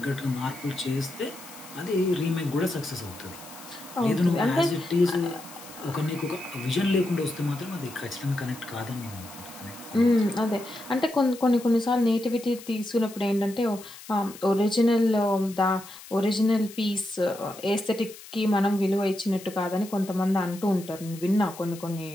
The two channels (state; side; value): noise; left; hiss, 17 dB below the sound